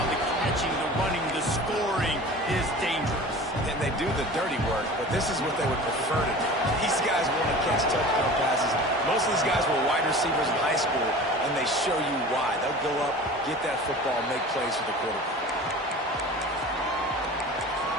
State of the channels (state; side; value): normal; both; correlation 0.39